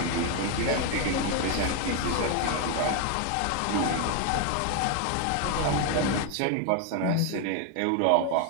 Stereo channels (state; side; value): different; both; correlation 0.01